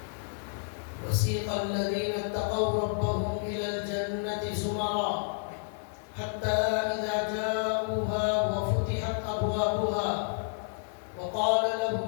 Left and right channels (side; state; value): right; silent; 58 dB below the other